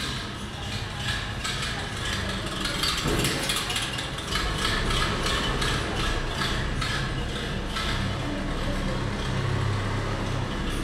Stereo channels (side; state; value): both; identical; correlation 1.00